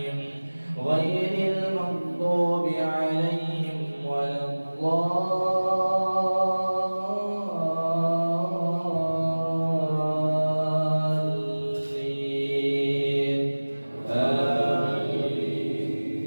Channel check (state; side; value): inverted; both; correlation -1.00